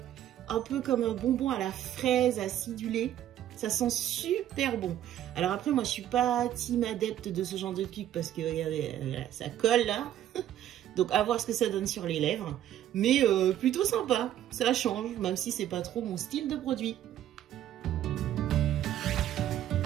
un peu comme un bonbon à la fraise acidulé. Ça sent super bon. Alors après, moi, je suis pas team adepte de ce genre de truc parce que regardez, ça colle là. Donc à voir ce que ça donne sur les lèvres. Mais plutôt sympa. Ça change, même si c'est pas trop mon style de produit.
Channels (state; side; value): quieter; left; 11.8 dB